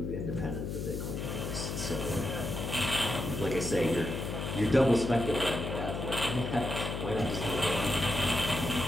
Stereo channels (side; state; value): left; noise; hum, 4 dB below the sound